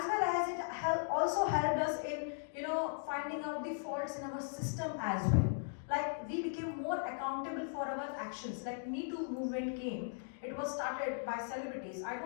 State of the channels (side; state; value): right; silent; digital silence